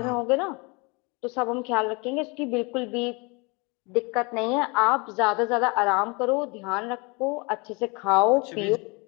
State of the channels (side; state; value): right; quieter; 29.0 dB